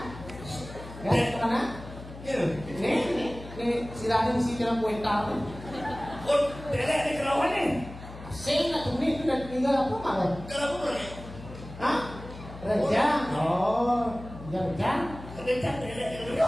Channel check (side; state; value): left; noise; hum, 14 dB below the sound